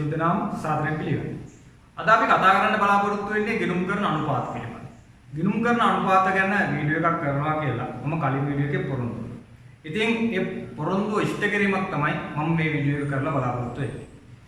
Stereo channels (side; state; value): both; identical; correlation 1.00